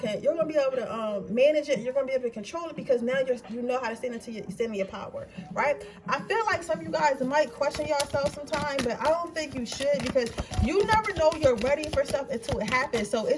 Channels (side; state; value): both; identical; correlation 1.00